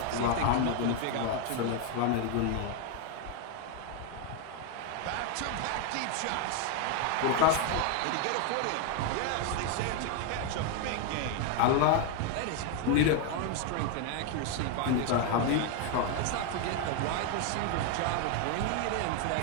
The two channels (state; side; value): different; both; correlation 0.01